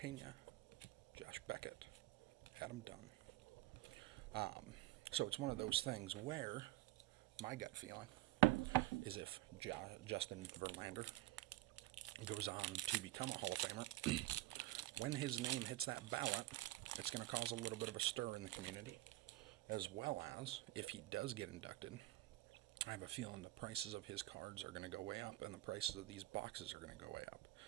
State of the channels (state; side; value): quieter; left; 17.7 dB